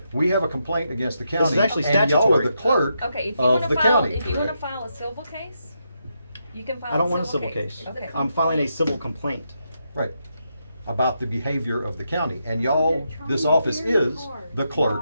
We have a complaint against the county. This is actually and y'all are statutory. the clerk Okay, if you of wanna the file, county, if you wanna correct? file a civil case, you can file I don't want a civil case. Okay. I'm filing a civil complaint. Right. About the behavior of the county. And y'all, this office is the clerk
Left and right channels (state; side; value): inverted; both; correlation -0.82